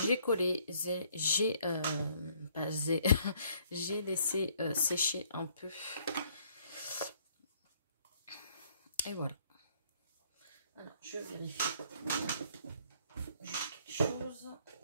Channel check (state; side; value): inverted; both; correlation -0.64